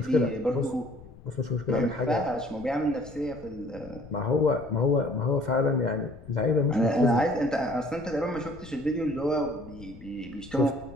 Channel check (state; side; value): noise; left; rumble, 18 dB below the sound